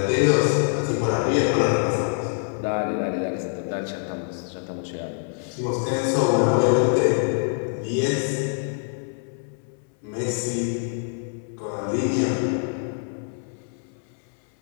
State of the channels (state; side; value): silent; right; 62 dB below the other